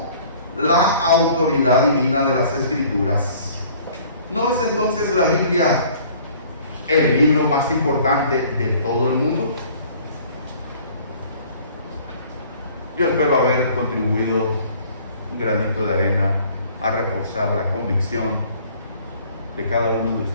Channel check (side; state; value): both; inverted; correlation -0.53